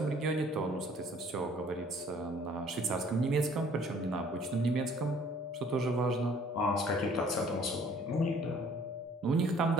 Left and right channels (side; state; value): both; normal; correlation 0.57